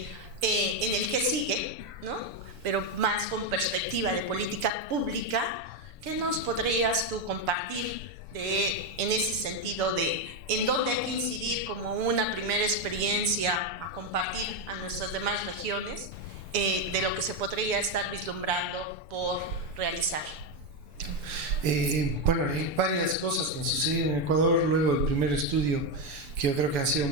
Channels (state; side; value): late; left; 7.0 ms